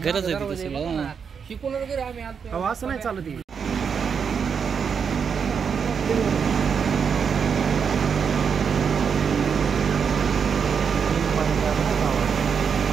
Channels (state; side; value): quieter; left; 6.6 dB